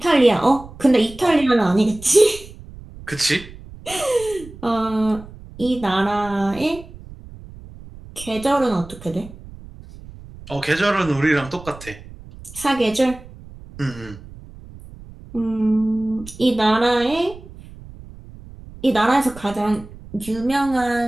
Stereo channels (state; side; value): noise; right; rumble, 17 dB below the sound